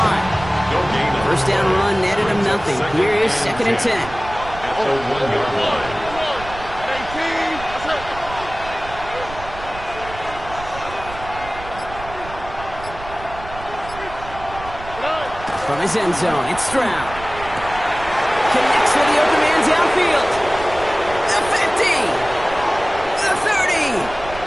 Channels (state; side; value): noise; right; rumble, 14 dB below the sound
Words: 1st down run netted him nothing. Here is 2nd and 10. At the 1-yard line. From his end zone, it's Stroud. Connects with the open man downfield. The 50. The